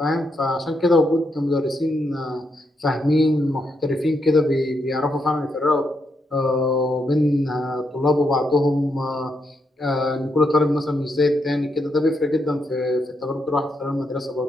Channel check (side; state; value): both; normal; correlation 0.81